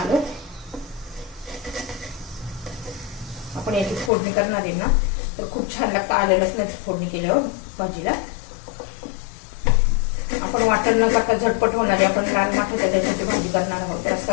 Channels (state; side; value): drops out; right; at 4.1 s